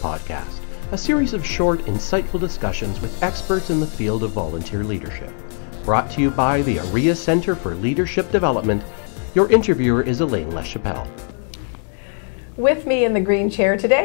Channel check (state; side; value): silent; right; 56 dB below the other